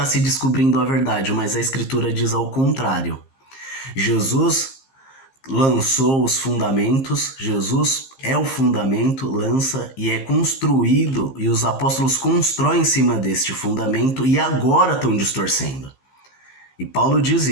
se descobrindo a verdade, mas a Escritura diz ao contrário. Jesus lançou os fundamentos, Jesus é o fundamento, lança e é construído, e os apóstolos constroem em cima deste fundamento e agora estão distorcendo. E Paulo diz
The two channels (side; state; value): right; late; 15 ms